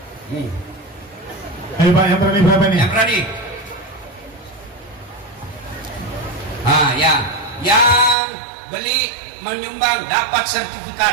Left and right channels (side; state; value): left; drops out; at 8.2 s